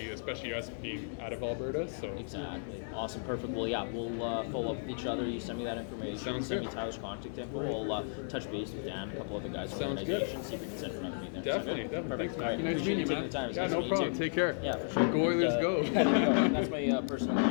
especially us being out of Alberta, so. Exactly. Awesome. Perfect. Well, yeah, we'll follow up with each other. You send me that information. Sounds send good. me Tyler's contact info. We'll touch base with Dan, a couple other guys from the Sounds good. organization, see if we can set another meeting. Definitely, Sound good? definitely. Thanks, Perfect. All right. Mackie. Nice Appreciate meeting you you, taking man. the time. It's Yeah, nice no to meet you, problem. too. Take care. Yeah, for sure. Go Oilers, go. There you go. That's my personal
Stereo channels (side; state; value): right; silent; digital silence